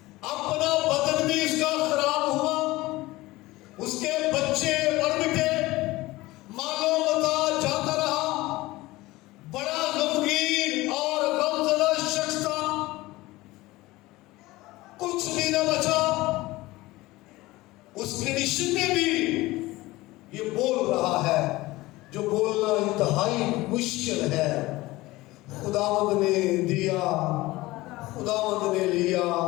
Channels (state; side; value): quieter; right; 19.4 dB